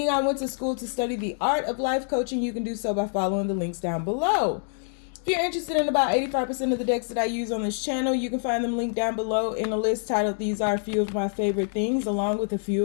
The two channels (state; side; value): silent; right; 61 dB below the other